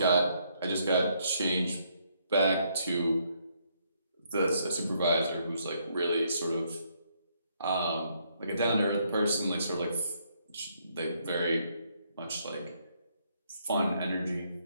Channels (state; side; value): inverted; both; correlation -0.72